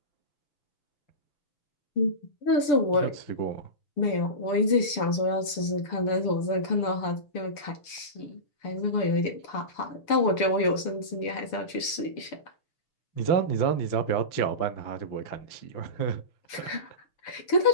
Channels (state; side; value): late; right; 6.8 ms